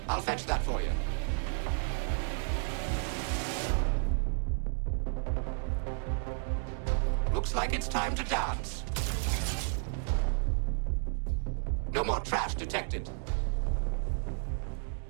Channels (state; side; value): silent; left; 56 dB below the other